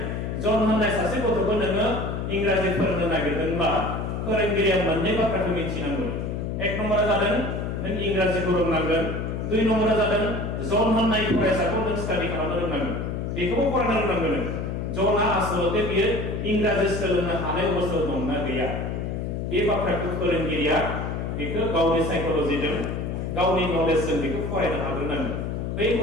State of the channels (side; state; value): left; noise; hum, 3 dB below the sound